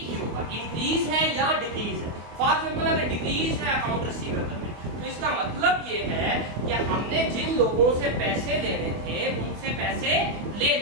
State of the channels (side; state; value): left; late; 24 ms